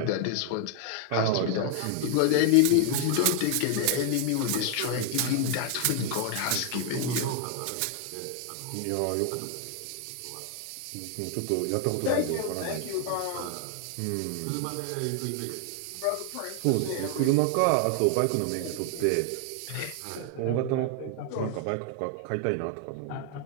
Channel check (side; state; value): both; different; correlation 0.00